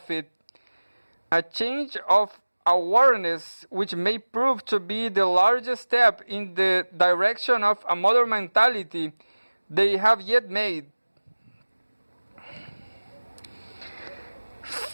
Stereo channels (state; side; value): inverted; both; correlation -1.00